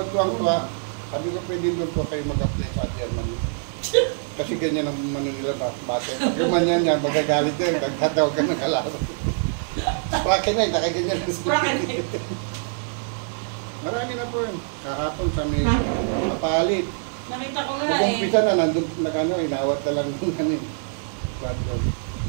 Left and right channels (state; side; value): silent; left; digital silence